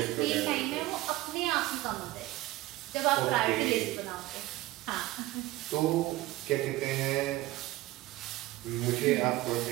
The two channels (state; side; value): quieter; left; 17.8 dB